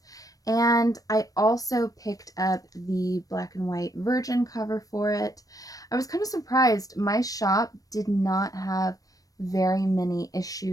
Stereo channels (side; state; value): right; late; 0.17 ms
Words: And I also picked up the black and white Virgin cover for it. I was kind of surprised. My shop did not have very many